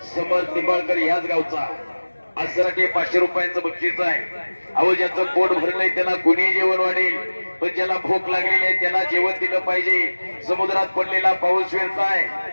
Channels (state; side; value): inverted; both; correlation -1.00